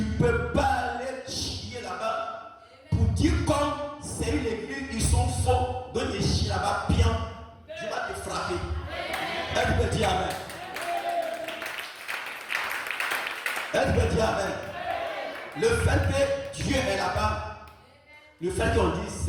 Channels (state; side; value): identical; both; correlation 1.00